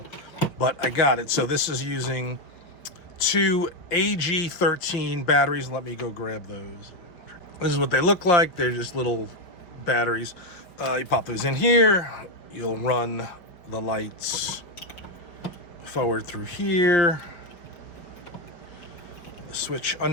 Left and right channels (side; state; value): right; late; 5.3 ms